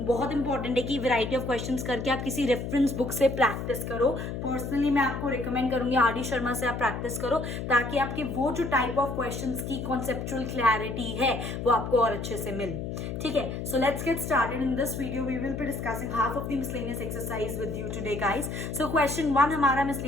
बहुत इंपॉर्टेंट है कि वैरायटी ऑफ क्वेश्चंस करके आप किसी रेफरेंस बुक से प्रैक्टिस करो. पर्सनली मैं आपको रिकमेंड करूंगी आर.डी. शर्मा से आप प्रैक्टिस करो ताकि आपके वो जो टाइप ऑफ क्वेश्चंस की कॉन्सेप्चुअल क्लैरिटी है वो आपको और अच्छे से मिले. ठीक है, so let's get started. In this video we will be discussing half of the miscellaneous exercise with you today guys. So question 1 हमारा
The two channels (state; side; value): noise; left; hum, 5 dB below the sound